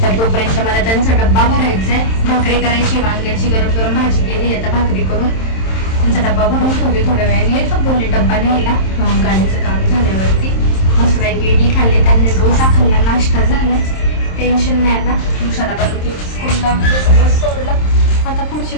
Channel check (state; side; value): late; right; 27 ms